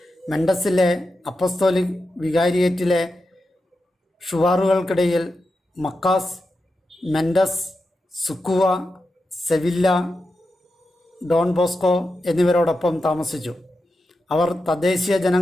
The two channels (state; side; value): normal; both; correlation 0.89